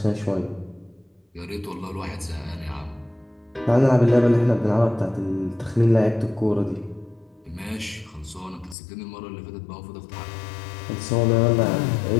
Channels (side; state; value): right; drops out; at 8.8 s